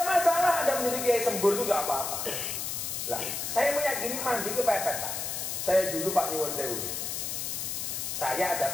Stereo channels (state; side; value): noise; left; hiss, 3 dB below the sound